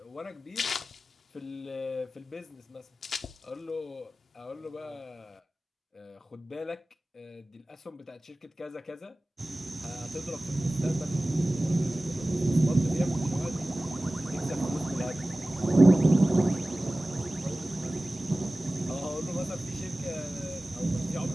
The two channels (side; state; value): both; normal; correlation 0.97